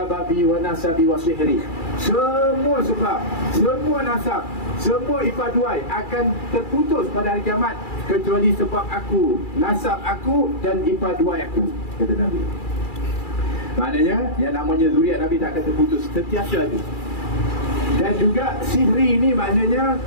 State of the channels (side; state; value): right; late; 2.4 ms